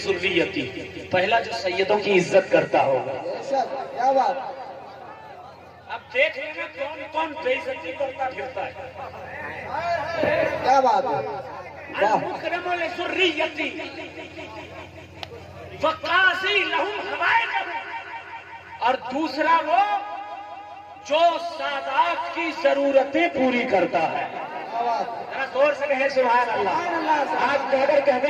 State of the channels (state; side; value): identical; both; correlation 1.00